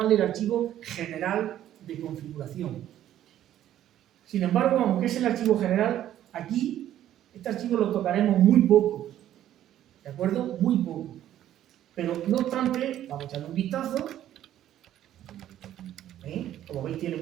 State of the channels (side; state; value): left; quieter; 12.0 dB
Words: el archivo general de configuración. Sin embargo, aunque es el archivo general, aquí este archivo lo tocaremos muy poco, ¿de acuerdo? Muy poco. Pero no obstante, vamos a echarle un vistazo. Como veis, tiene